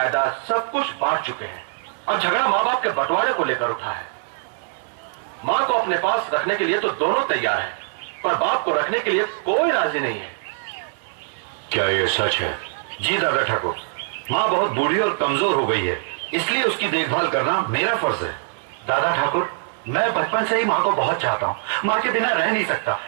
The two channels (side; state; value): left; silent; 64 dB below the other